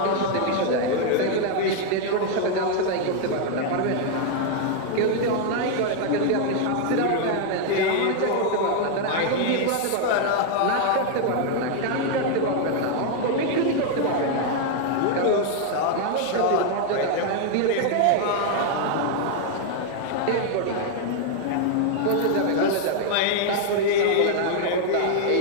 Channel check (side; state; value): both; different; correlation 0.00